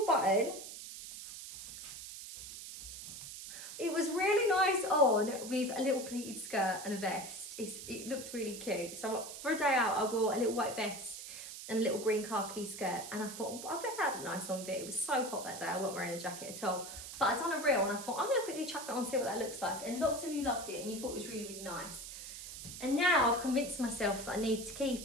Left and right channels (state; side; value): noise; right; hiss, 10 dB below the sound